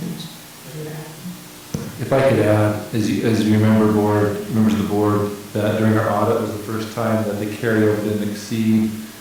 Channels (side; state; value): both; identical; correlation 1.00